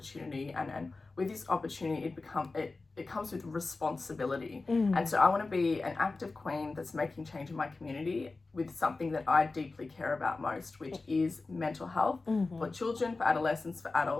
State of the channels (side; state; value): right; quieter; 3.6 dB